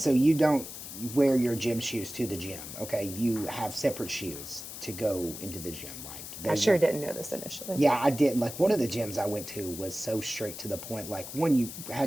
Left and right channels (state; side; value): noise; left; hiss, 10 dB below the sound